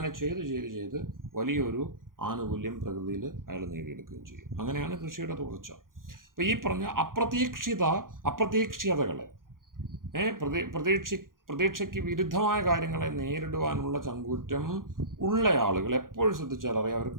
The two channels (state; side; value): late; left; 0.90 ms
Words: ചെയ്ത് വലിയൊരു ആനുകൂല്യം പ്രകൃതിയിൽ അയാൾ നേടിയെടുക്കുകയും ചെയ്യും. അങ്ങനെയാണ് കൃഷിയുടെ തുടർച്ച. അപ്പോൾ ഈ പറഞ്ഞ അപ്രതീക്ഷിതകളെ പ്രതീക്ഷയ്ക്ക് വിരുദ്ധമായ കാര്യങ്ങളെ നേരിടുവാനുള്ള ചങ്കൂറ്റം ഉള്ള ആളുകൾ എപ്പോഴും ശ്രദ്ധിച്ചാൽ അറിയാം,